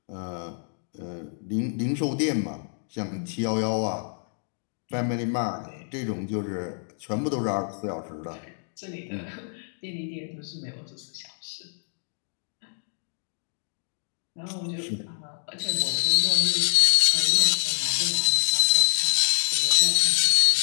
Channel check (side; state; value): right; silent; digital silence